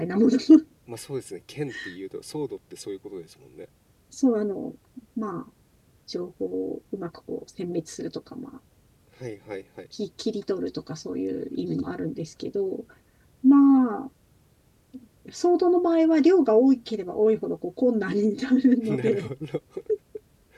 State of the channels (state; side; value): identical; both; correlation 1.00